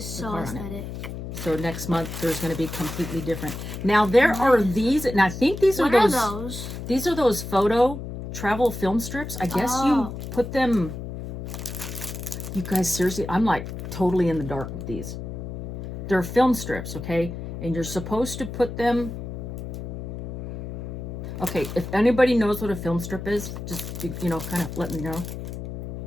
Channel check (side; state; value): left; noise; hum, 8 dB below the sound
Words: so aesthetic. So next month, there's going to be completely different. Now, there are these, and I think these are those. What are those? These are those photo travel film strips. I guess you put them. You guys, seriously, I'm like totally in the dark with these. They're film strips, okay? And you're supposed to put them. Okay, if anybody knows what a film strip is, just, you know, kind of let me know.